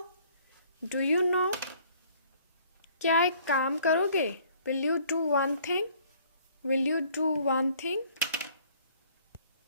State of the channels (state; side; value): inverted; both; correlation -0.58